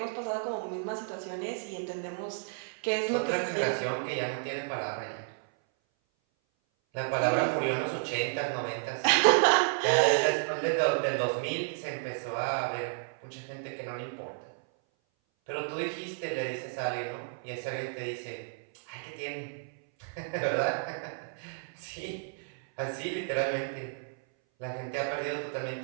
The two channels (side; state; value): left; silent; 57 dB below the other